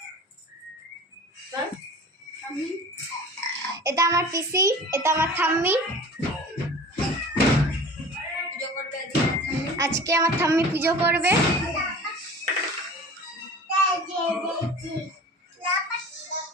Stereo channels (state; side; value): normal; both; correlation 0.40